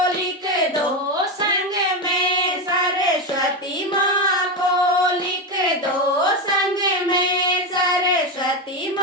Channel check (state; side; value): normal; both; correlation 0.13